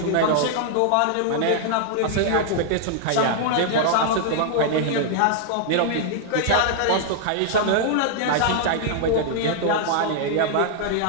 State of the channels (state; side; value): different; both; correlation -0.01